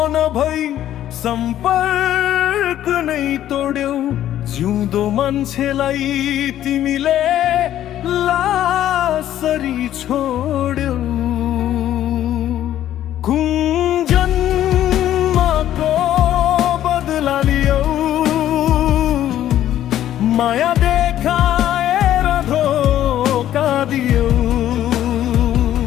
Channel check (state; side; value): quieter; right; 12.1 dB